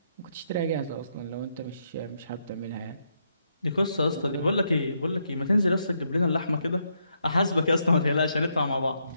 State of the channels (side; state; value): both; inverted; correlation -0.78